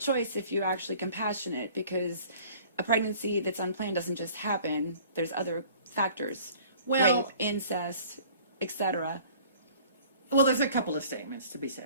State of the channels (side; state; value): both; inverted; correlation -0.49